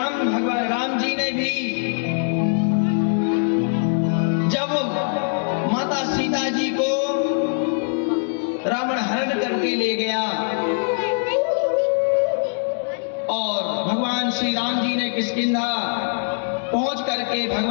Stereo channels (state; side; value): silent; right; digital silence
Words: जी ने भी जब माता सीता जी को रावण हरण करके ले गया और भगवान श्री राम जी ने किष्किंधा पहुंच करके